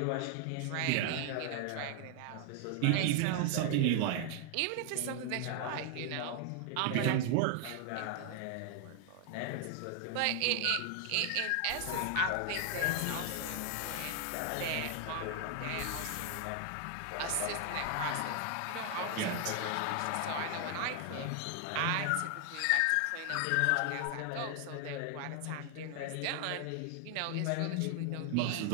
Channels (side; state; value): both; different; correlation 0.00